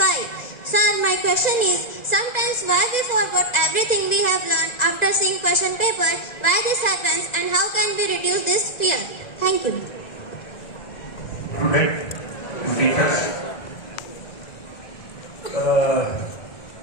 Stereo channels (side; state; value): right; late; 1.9 ms